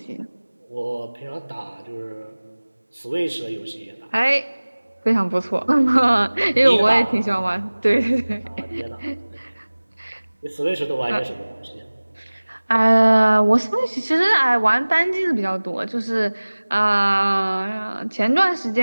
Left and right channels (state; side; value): inverted; both; correlation -1.00